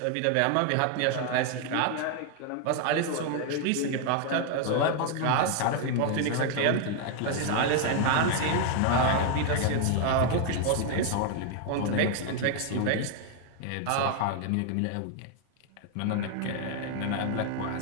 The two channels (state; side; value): different; both; correlation 0.00